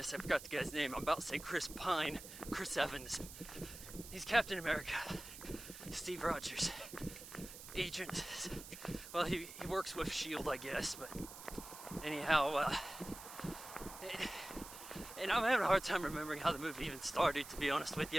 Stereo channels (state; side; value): noise; right; hiss, 13 dB below the sound